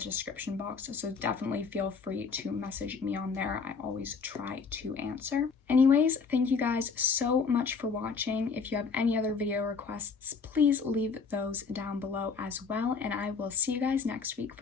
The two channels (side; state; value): right; quieter; 5.2 dB